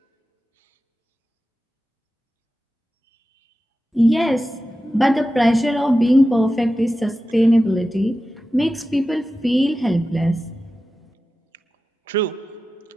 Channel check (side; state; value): both; normal; correlation 0.93